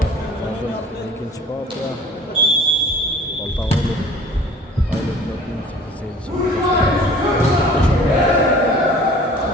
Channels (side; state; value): both; normal; correlation 0.47